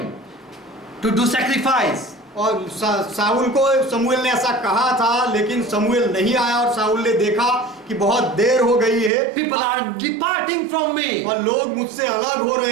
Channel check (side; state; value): left; drops out; at 9.1 s